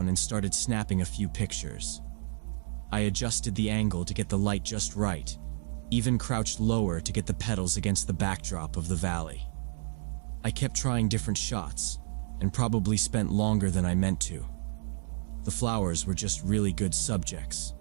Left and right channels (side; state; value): left; silent; digital silence